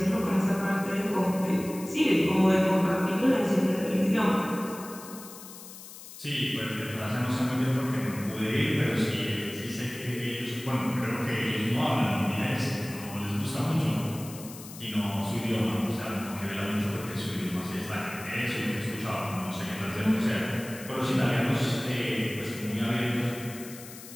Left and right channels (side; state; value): left; noise; hiss, 15 dB below the sound